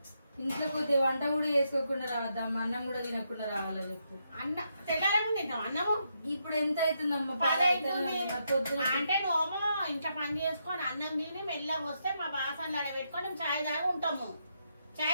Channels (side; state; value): both; inverted; correlation -0.80